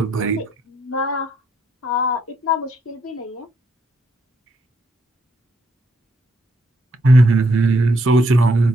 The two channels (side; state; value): both; normal; correlation 0.74